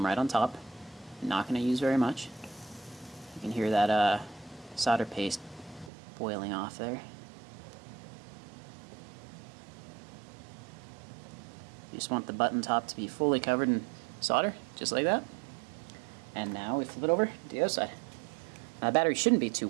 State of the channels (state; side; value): drops out; left; at 5.9 s